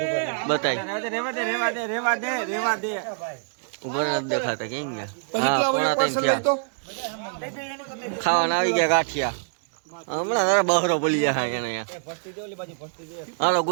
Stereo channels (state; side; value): silent; left; digital silence